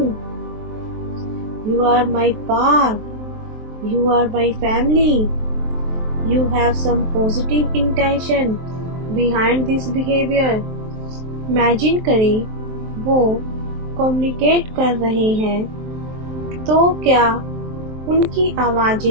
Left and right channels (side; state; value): left; late; 23 ms